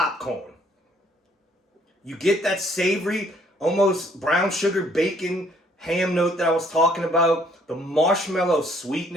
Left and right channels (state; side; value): normal; both; correlation 0.64